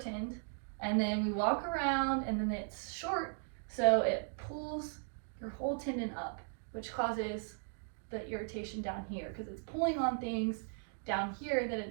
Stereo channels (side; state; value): left; silent; digital silence